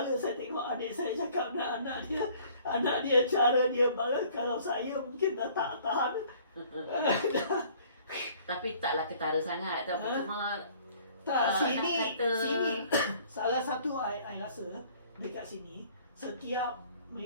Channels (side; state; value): both; inverted; correlation -0.55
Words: saya tengok adik saya cakap dengan anak dia cara dia balas. Kalau saya mungkin dah tak tahan. Tapi taklah ketara sangat. Tapi cuma sini salah satu I rasa dekat sini setiap